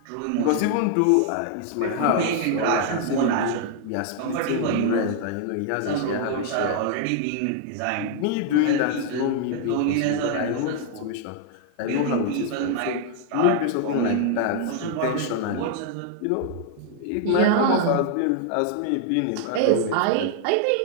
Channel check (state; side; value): different; both; correlation 0.00